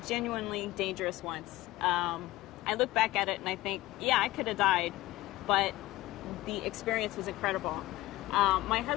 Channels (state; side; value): quieter; right; 17.5 dB